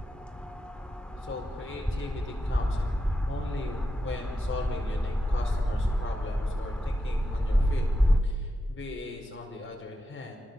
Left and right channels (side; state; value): both; normal; correlation 0.88